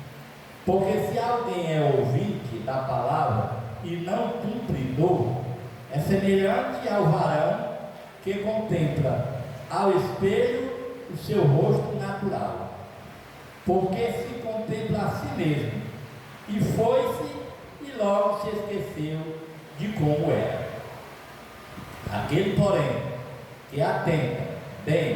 Porque se alguém é ouvinte da palavra e não cumpridor, é semelhante ao varão que contempla ao espelho o seu rosto natural, porque se contempla a si mesmo, e foi-se e logo se esqueceu de como era. Aquele, porém, que atenta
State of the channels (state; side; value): identical; both; correlation 1.00